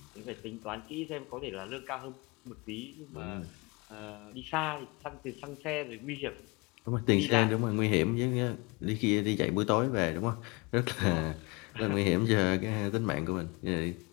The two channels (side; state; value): right; quieter; 27.6 dB